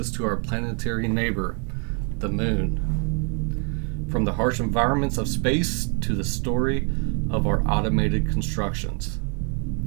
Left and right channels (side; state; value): left; quieter; 38.4 dB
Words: to our planetary neighbor, the Moon. From the harsh environments of space to the story of our automated constructions.